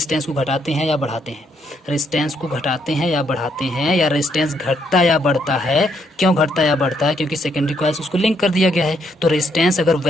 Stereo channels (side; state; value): both; normal; correlation 0.73